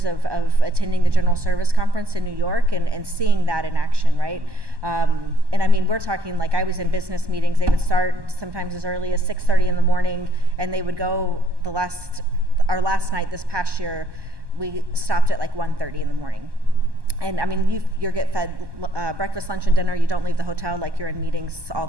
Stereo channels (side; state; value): left; late; 1.2 ms